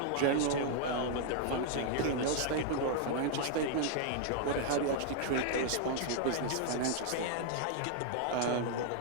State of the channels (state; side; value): different; both; correlation 0.00